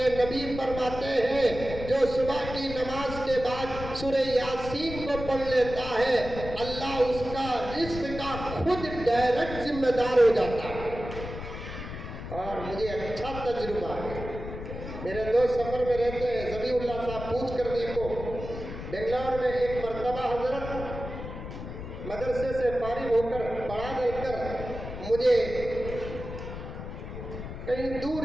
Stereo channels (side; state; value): left; noise; rumble, 9 dB below the sound